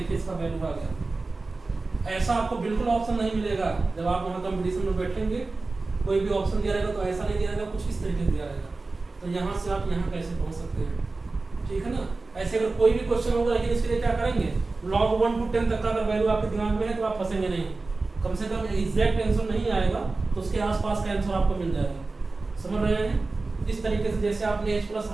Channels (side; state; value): left; quieter; 3.6 dB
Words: इसका वैल्यू आ गया। ऐसा आपको बिल्कुल ऑप्शन नहीं मिलेगा जब आप वहाँ कंपटीशन में बैठेंगे, कोई भी ऑप्शन दिया रहेगा तो ऐसा नहीं दिया रहेगा, कुछ इस तरीके से दिया रहेगा। तो यहाँ से आप यहाँ कैसे पहुँच सकते हैं, ठीक है ना। ऐसे अगर कोई भी क्वेश्चन होगा लेकिन इसके लिए क्या करेंगे, log 1 to 10 तक का अगर वैल्यू आपके दिमाग में है तो आप फंसेंगे नहीं, कम से कम एग्जैक्ट आंसर नहीं आएगा तो उसके आसपास का आंसर आपको मिल जाएगा, समझ रहे हैं। इस तरीके से जैसे आपने H प्लस